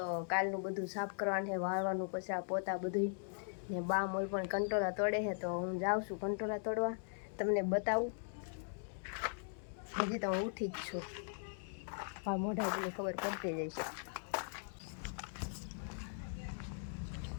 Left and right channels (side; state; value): right; silent; digital silence